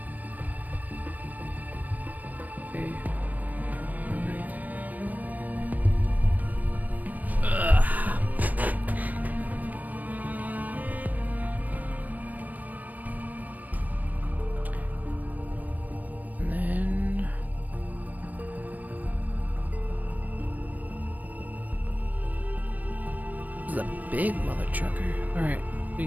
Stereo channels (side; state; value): left; late; 0.080 ms